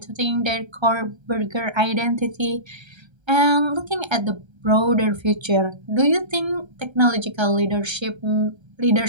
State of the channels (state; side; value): late; left; 1.3 ms